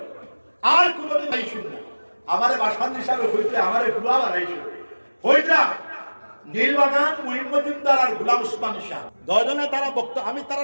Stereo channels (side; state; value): both; inverted; correlation -1.00